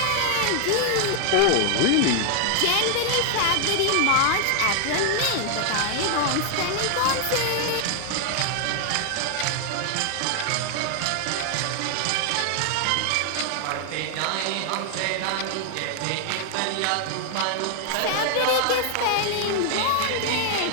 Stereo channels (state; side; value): different; both; correlation 0.00